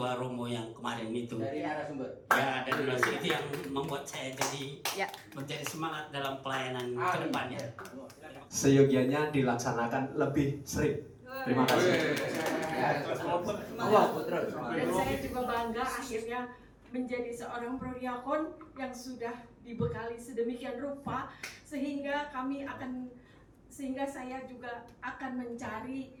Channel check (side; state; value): both; identical; correlation 1.00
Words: romo yang kemarin itu. Dari narasumber. Ya, dari narasumber itu yang membuat saya jadi menjadi semangat dalam pelayanan ke depannya. Seyogianya dilaksanakan lebih sering. Terima kasih. Dan saya juga bangga akhirnya menjadi seorang prodiakon yang sudah dibekali sedemikian rupa sehingga saya juga akan